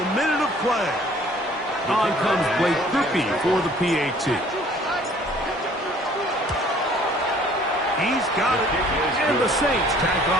minute of play. On comes Blake Kirby for the PAT. He's got it. And the Saints tack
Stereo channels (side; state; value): both; normal; correlation 0.55